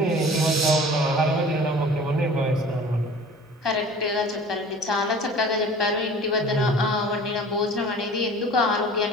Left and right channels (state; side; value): normal; both; correlation 0.43